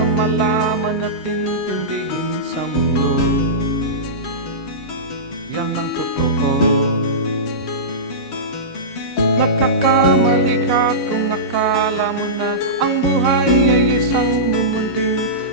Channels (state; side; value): normal; both; correlation -0.17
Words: malaman at intindihin sa mundo. Yan ang totoo. Nagkakamali ka kung akala mo na ang buhay ay isang mumunting